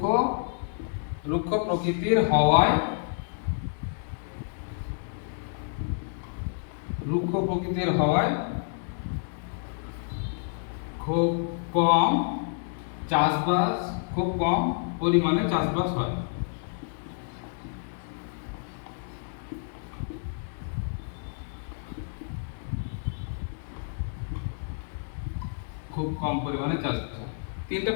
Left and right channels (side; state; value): right; silent; digital silence